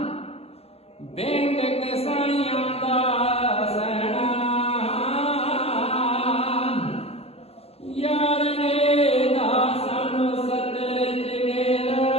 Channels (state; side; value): late; right; 0.29 ms